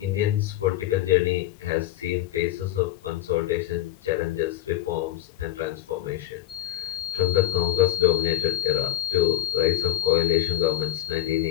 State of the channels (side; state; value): right; quieter; 14.3 dB